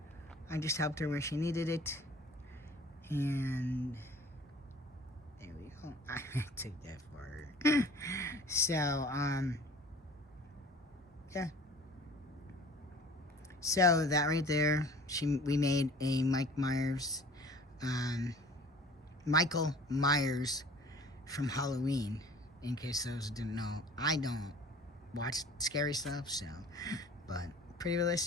I just helped her where she needed it. And there we go. I took that for her. So, yeah. So, that right there, we made a Michael Myers from Halloween, in case those didn't know. I don't watch scary stuff, so, but pretty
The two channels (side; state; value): both; normal; correlation 0.47